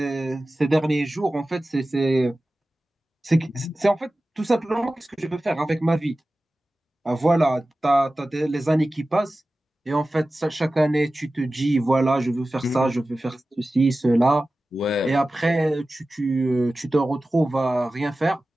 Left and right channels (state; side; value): normal; both; correlation 0.95